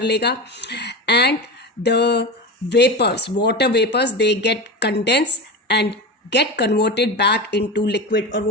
लेगा, and the vapours, water vapours, they get condense and get converted back into liquid, और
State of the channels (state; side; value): normal; both; correlation 0.24